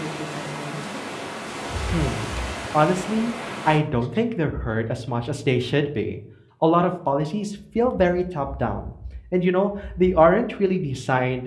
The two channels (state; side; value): identical; both; correlation 1.00